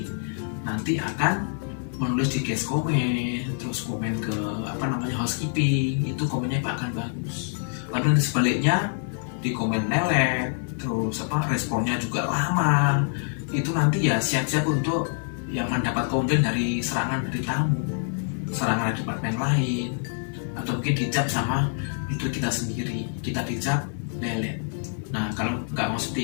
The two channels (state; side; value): silent; right; digital silence